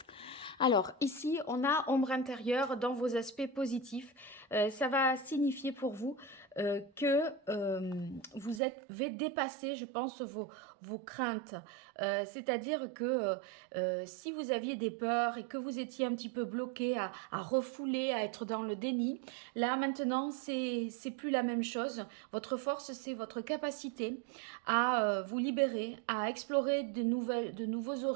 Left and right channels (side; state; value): left; drops out; at 8.6 s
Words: Alors, ici, on a ombre intérieure dans vos aspects positifs. Ça va signifier pour vous que vous avez dépassé, je pense, vos craintes. C'est-à-dire que si vous aviez des peurs et que vous étiez un petit peu bloqué à refouler, à être dans le déni, là, maintenant, c'est plus la même chose. Votre force, c'est votre capacité à vous libérer, à explorer de nouveaux